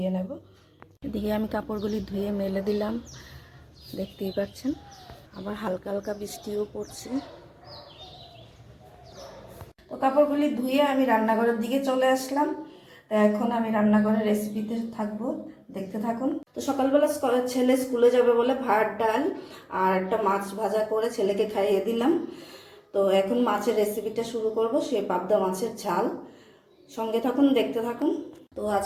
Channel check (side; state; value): both; identical; correlation 1.00